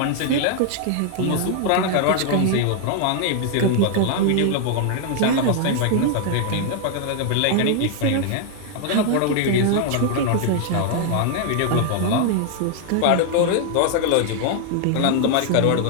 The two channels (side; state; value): both; different; correlation 0.00